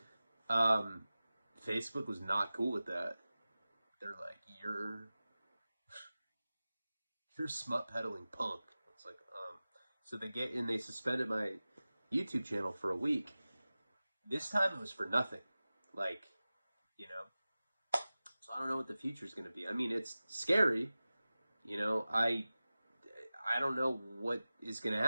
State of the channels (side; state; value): both; inverted; correlation -0.97